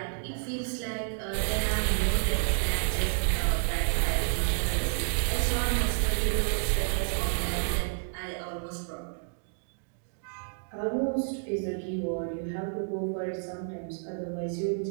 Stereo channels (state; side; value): silent; left; digital silence